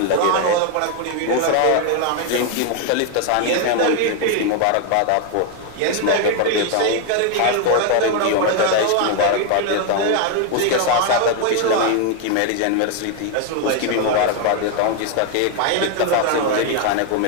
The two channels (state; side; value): different; both; correlation 0.01